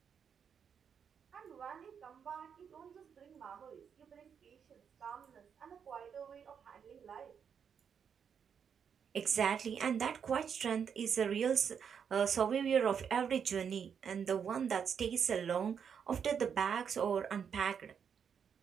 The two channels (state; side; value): quieter; left; 7.3 dB